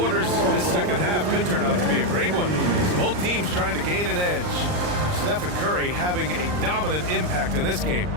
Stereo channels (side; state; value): left; late; 39 ms